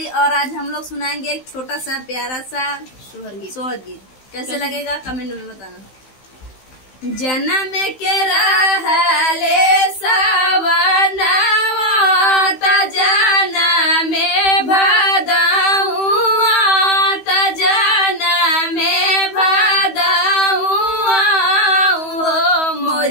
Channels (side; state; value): right; late; 16 ms